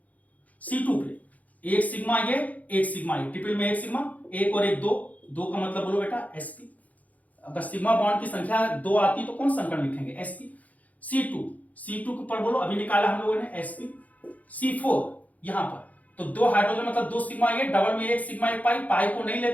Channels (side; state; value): right; late; 0.075 ms